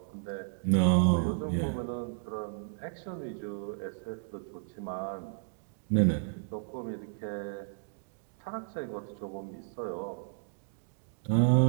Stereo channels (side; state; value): left; silent; digital silence